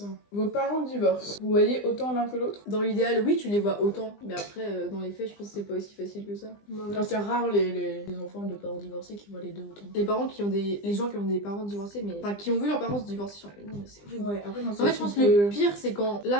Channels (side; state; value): right; late; 20 ms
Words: Vos parents divorcent. Vous voyez autant l'un que l'autre? dans l'idéal, oui, tu les vois autant, mais après, dans les faits, je pense que c'est pas aussi facile que ça. Enfin, c'est rare les enfants de parents divorcés qui voient les deux autant. Les parents qui ont des. Les gens qui ont des parents divorcés, mais. Enfin, qui ont vu leurs parents se divorcer, genre, non, mais c'est horrible. Ouais, après, non, En fait, je pense que le pire, c'est quand.